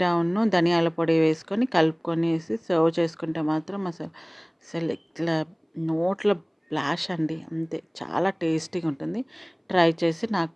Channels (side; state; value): both; identical; correlation 1.00